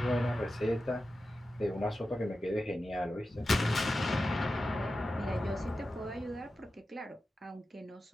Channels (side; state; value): both; normal; correlation 0.92